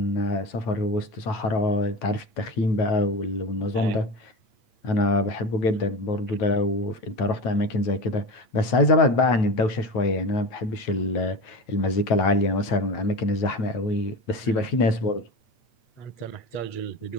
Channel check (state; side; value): late; right; 8.6 ms